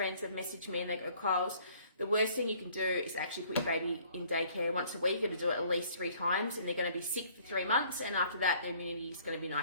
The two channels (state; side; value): inverted; both; correlation -0.58